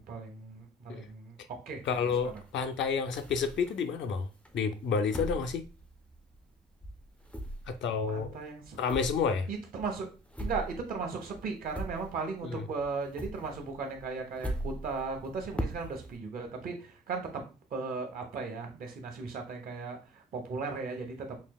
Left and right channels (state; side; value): normal; both; correlation 0.41